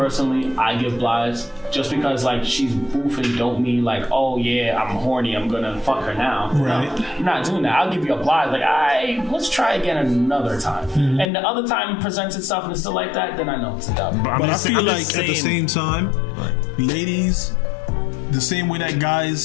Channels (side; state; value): right; drops out; at 11.2 s